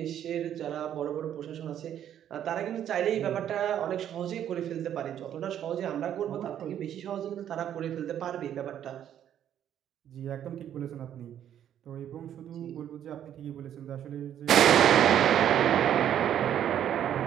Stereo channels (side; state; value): left; quieter; 10.3 dB